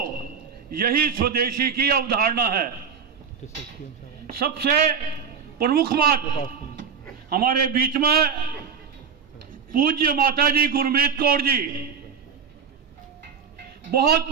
यही स्वदेशी की अवधारणा है। सबसे प्रमुख बात, हमारे बीच में पूज्य माताजी गुरमीत कौर जी बहुत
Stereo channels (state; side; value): quieter; left; 6.6 dB